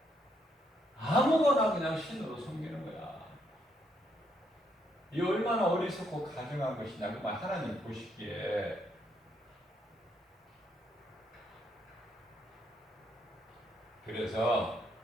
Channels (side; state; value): both; normal; correlation 0.74